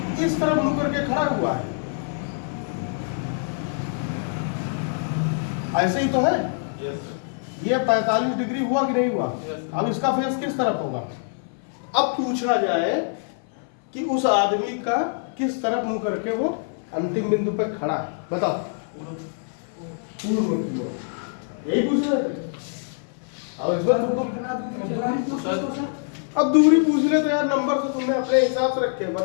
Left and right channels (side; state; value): right; silent; 59 dB below the other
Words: इस तरफ मुंह करके खड़ा हुआ है, ऐसे ही तो है। ये 45 डिग्री हुआ कि नहीं हुआ? अब इसका फेस किस तरफ होगा? अब पूछा जाए कि उस आदमी का किस तरफ मुंह करके वो अंतिम बिंदु पे खड़ा है, बताओ। पूर्व की ओर, यही पूछ रहे थे। अब इस बार अब दूरी पूछ ले तो यार नंबर से तुमने अपने हिसाब से रखे,